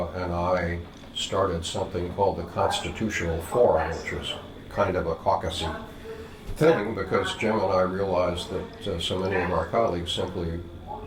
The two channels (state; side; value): identical; both; correlation 1.00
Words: and I started something called the Constitutional Forum, which was kind of a caucusy thing, because Jim and I realized that so many of our colleagues simply